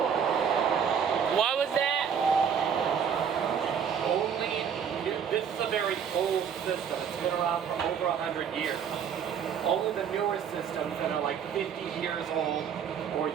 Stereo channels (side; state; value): left; quieter; 7.6 dB